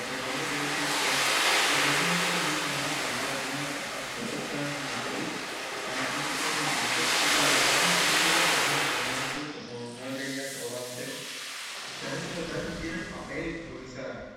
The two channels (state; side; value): identical; both; correlation 1.00